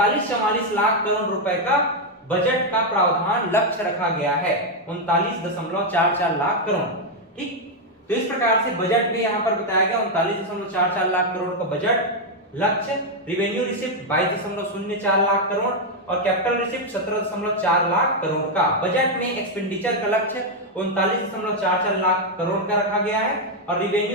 लाख करोड़ रुपए का बजट का प्रावधान लक्ष्य रखा गया है, 39.44 लाख करोड़। ठीक, तो इस प्रकार से बजट में यहां पर बताया गया 39.44 लाख करोड़ का बजट लक्ष्य। रिवेन्यू रिसिप्ट 22.04 लाख करोड़ और कैपिटल रिसिप्ट 17.4 लाख करोड़ का। बजट में एक्सपेंडिचर का लक्ष्य 39.44 लाख करोड़ का रखा गया है और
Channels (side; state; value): both; normal; correlation 0.01